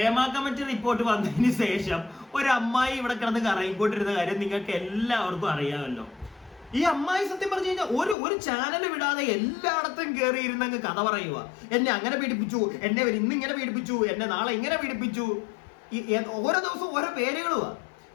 കമ്മിറ്റി റിപ്പോർട്ട് വന്നതിന് ശേഷം ഒരു അമ്മായി ഇവിടെ കിടന്ന് കറങ്ങിക്കൊണ്ടിരുന്ന കാര്യം നിങ്ങൾക്ക് എല്ലാവർക്കും അറിയാമല്ലോ. ഈ അമ്മായി സത്യം പറഞ്ഞു കഴിഞ്ഞാൽ ഒരു ചാനൽ വിടാതെ എല്ലായിടത്തും കയറി ഇരുന്നങ്ങ് കഥ പറയുക. എന്നെ അങ്ങനെ പീഡിപ്പിച്ചു, എന്നെ ഇന്ന് ഇങ്ങനെ പീഡിപ്പിച്ചു, എന്നെ നാളെ ഇങ്ങനെ പീഡിപ്പിച്ചു. ഓരോ ദിവസവും ഓരോ പേരുകളുവാ.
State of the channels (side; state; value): right; drops out; at 8.2 s